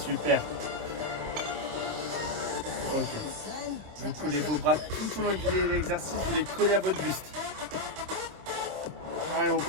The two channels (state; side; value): late; left; 26 ms